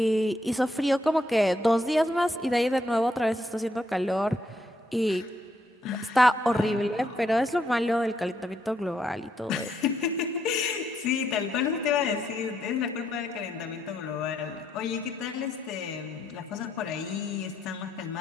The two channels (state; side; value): normal; both; correlation 0.76